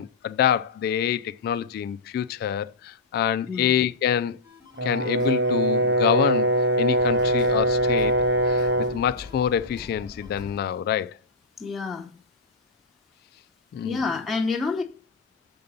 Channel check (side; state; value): right; quieter; 3.0 dB